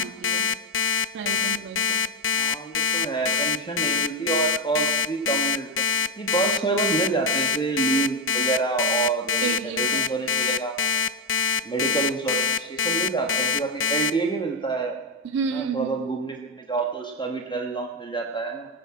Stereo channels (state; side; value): normal; both; correlation 0.05